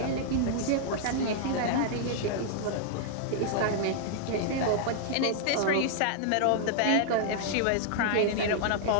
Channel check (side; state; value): both; different; correlation -0.01